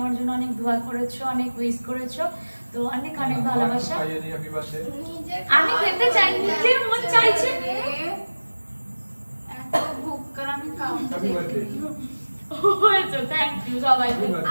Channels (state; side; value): inverted; both; correlation -1.00